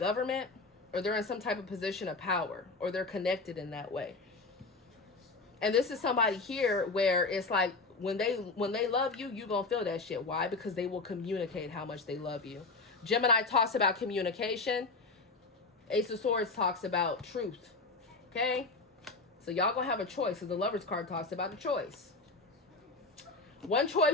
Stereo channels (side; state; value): right; quieter; 3.7 dB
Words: or they're in some type of position of power, or they're connected in that way. And this is somebody here where it's like, when they love you, you're going to feel that shit. Why? Because they will communicate how much they love you. Gemini talks about communication. Ace of Swords talks about truth. Okay? So y'all going to have a choice. So the Lover's card talks about a choice. One